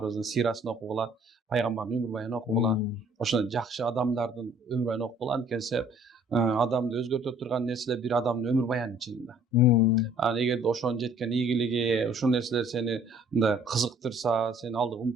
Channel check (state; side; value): normal; both; correlation 0.56